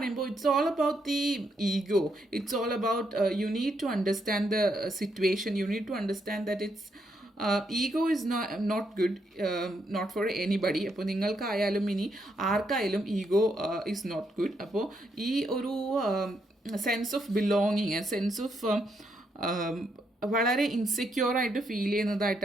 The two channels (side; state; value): both; normal; correlation 0.78